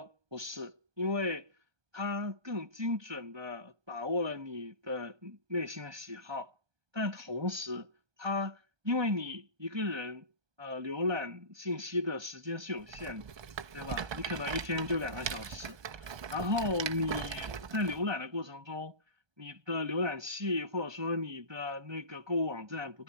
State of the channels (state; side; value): late; left; 1.2 ms